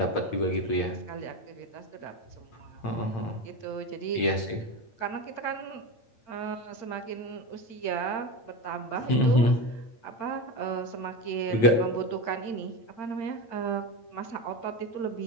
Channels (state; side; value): late; right; 8.8 ms